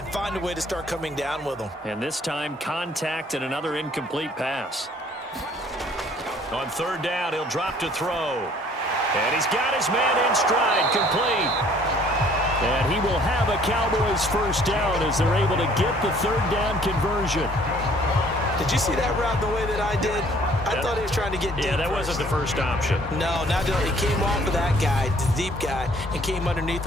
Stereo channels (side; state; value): both; normal; correlation 0.58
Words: find a way to start coming down with them. And this time, contact and another incomplete pass. On 3rd down, he'll drop to throw. And he's got his man in stride, complete. And he will have a Cowboys 1st down as they're able to get the 3rd down conversion. Did you see that route the way that I did? I thought he was trying to get deep. Yeah, that wasn't the first option. No, not he came off of that guy, the deep guy, and came underneath